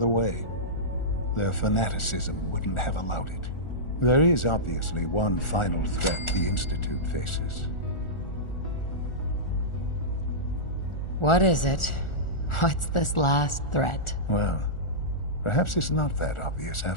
way. Their fanaticism wouldn't have allowed it. There is obviously one final threat the Institute faces. What is it? What's this last threat? Well, perhaps it's not that obvious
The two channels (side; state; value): right; late; 1.4 ms